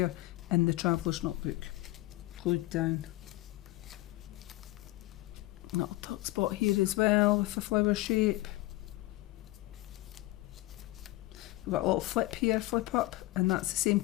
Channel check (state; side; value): quieter; right; 18.7 dB